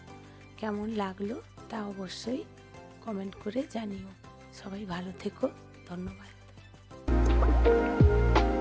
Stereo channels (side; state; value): both; identical; correlation 1.00